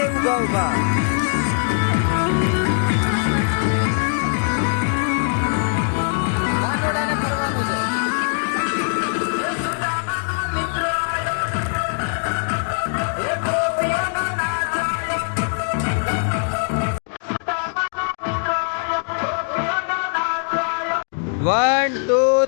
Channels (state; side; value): silent; right; digital silence